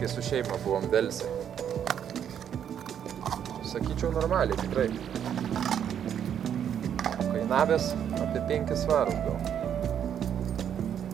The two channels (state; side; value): quieter; left; 9.0 dB